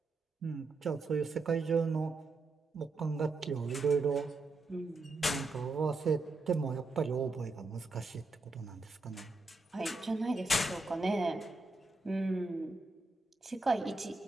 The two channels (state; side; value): quieter; left; 3.3 dB